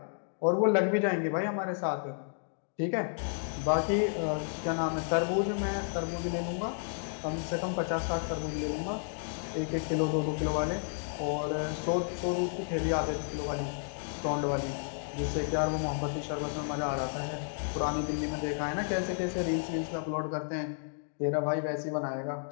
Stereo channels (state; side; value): silent; right; digital silence